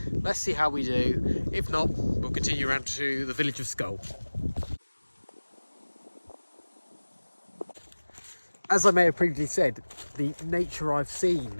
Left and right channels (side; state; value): both; inverted; correlation -1.00